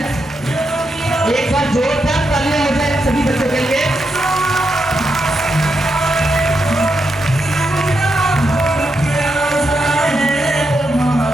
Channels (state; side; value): normal; both; correlation 0.84